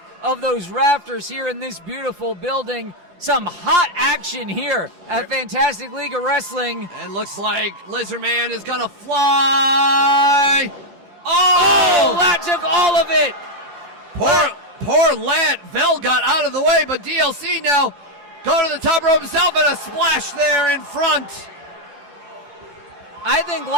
of those rafters here in this beautiful building. Some hot action here at Fantastic League of Wrestling. And looks like Lizard Man is going to fly. Oh, that took all of it. Poor Lat. Vel got out of the way, but DLC now going to the top rope himself and a splash there in front. I think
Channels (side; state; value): left; late; 10 ms